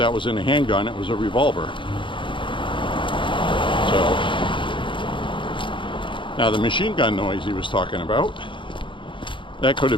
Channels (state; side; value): late; right; 0.24 ms